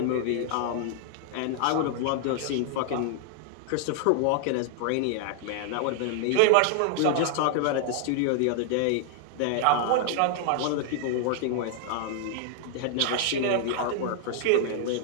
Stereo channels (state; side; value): different; both; correlation 0.00